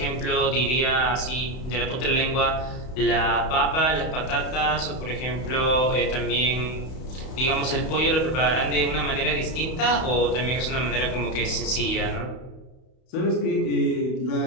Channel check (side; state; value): right; late; 31 ms